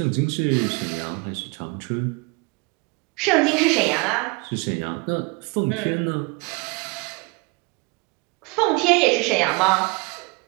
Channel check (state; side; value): quieter; left; 28.2 dB